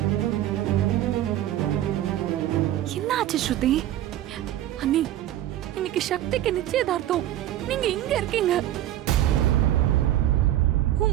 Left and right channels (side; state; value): left; quieter; 13.0 dB